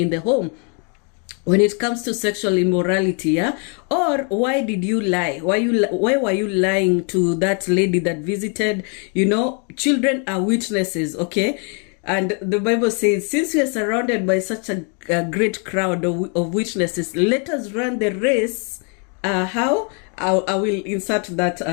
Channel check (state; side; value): quieter; right; 38.6 dB